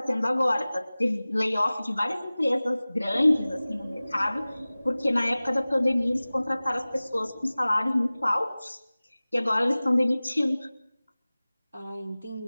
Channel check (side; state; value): both; inverted; correlation -0.98